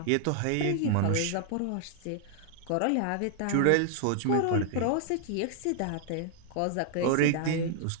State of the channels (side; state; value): both; different; correlation 0.00